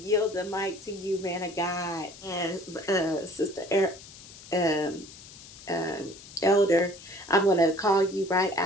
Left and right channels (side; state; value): left; noise; hiss, 18 dB below the sound